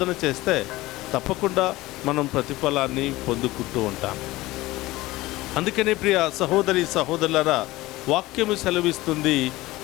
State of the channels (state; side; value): quieter; right; 18.8 dB